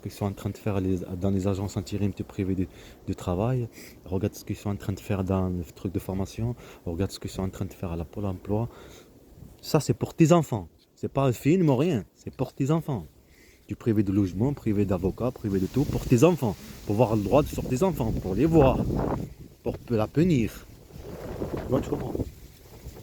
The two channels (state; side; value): identical; both; correlation 1.00